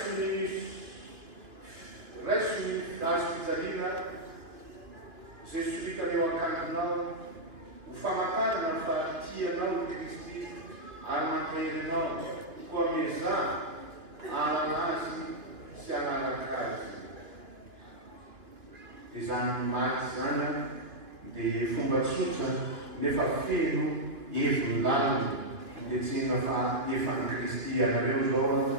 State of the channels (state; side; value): late; left; 3.1 ms